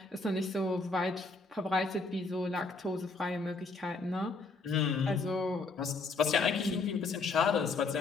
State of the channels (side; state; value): right; quieter; 3.8 dB